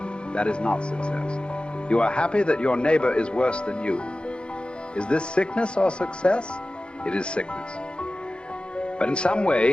That is not success. You are happy that your neighbor is worse than you. Is this sickness or success? It is sickness. But in some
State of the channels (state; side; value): late; right; 0.054 ms